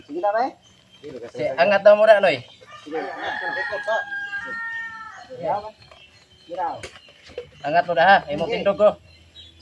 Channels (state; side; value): identical; both; correlation 1.00